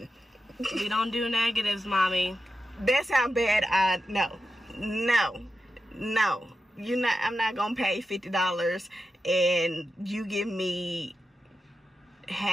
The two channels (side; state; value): both; normal; correlation 0.90